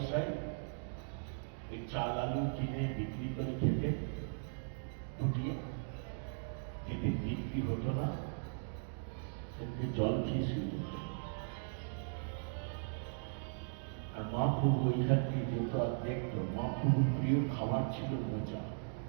ওই চাল আলু কিনে বিক্রি করে খেতে ফুটিয়ে, যেদিন বিক্রি হতো না সেদিন জল খেয়ে শুয়ে যেত। আর মহাপ্রভু ওইখান থেকে যেত আর দেখতো, মহাপ্রভুর প্রিয় খাবার ছিল মোচা।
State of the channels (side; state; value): left; silent; digital silence